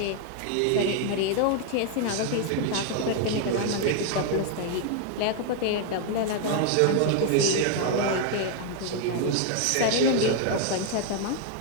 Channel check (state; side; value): different; both; correlation 0.00